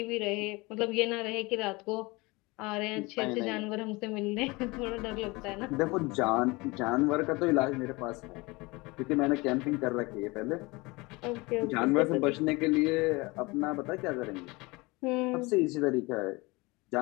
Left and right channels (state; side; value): quieter; right; 24.3 dB